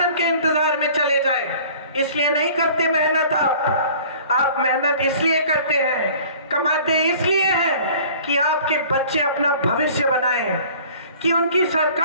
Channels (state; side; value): inverted; both; correlation -0.49